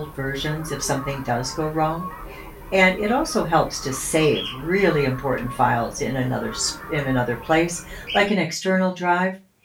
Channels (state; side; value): identical; both; correlation 1.00